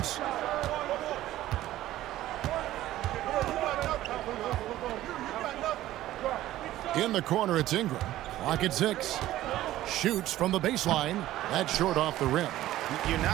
In the corner, it's Ingram. Clock at 6. Shoots from the baseline. That's short off the rim. You're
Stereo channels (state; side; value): quieter; left; 14.6 dB